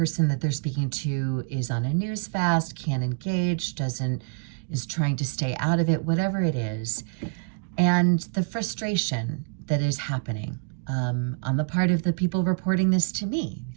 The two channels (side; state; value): left; quieter; 38.7 dB